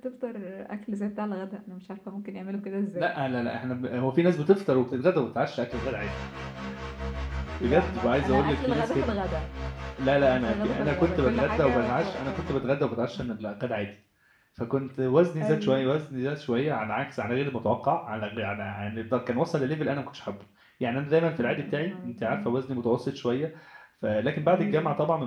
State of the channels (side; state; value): both; identical; correlation 1.00